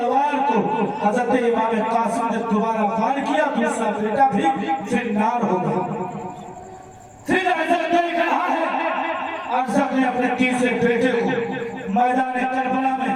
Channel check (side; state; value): both; identical; correlation 1.00